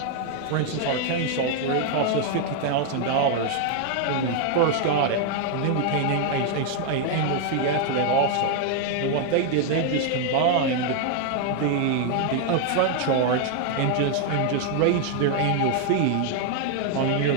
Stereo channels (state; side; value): different; both; correlation 0.00